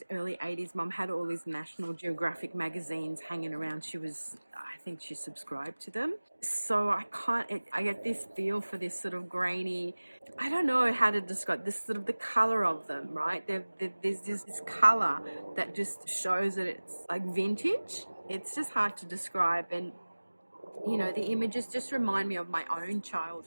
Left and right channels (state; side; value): inverted; both; correlation -1.00